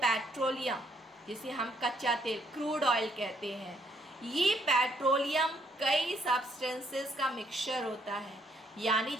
पेट्रोलियम, जिसे हम कच्चा तेल, क्रूड ऑयल कहते हैं, ये पेट्रोलियम कई सब्सटेंसेस का मिक्सचर होता है. यानी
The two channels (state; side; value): normal; both; correlation 0.70